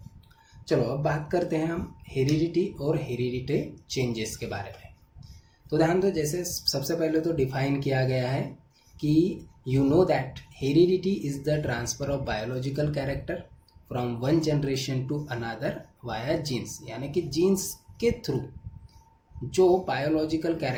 चलो अब बात करते हैं हम हेरिडिटी और हेरिडिटी चेंजेस के बारे में। तो ध्यान दो, जैसे सबसे पहले तो डिफाइन किया गया है कि you know that heredity is the transfer of biological character from one generation to another via genes, यानी कि जीन्स के थ्रू जो बायोलॉजिकल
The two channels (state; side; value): identical; both; correlation 1.00